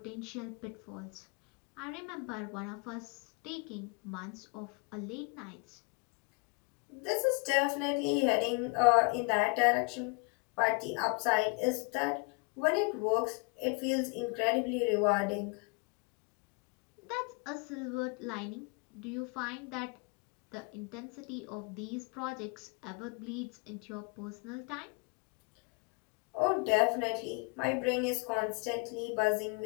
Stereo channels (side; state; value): right; quieter; 32.3 dB